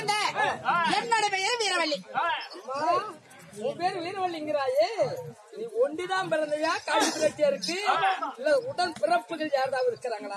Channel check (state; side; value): identical; both; correlation 1.00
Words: என்னோட பெயர் வீரவள்ளி. உன் பேரு வீரவள்ளிங்கிறாயே, நீ ஒண்டிதான் பிறந்தையா? காசிப்பு ரெட்டியாருக்கு இல்ல உடன் பிறப்புகள் யாராவது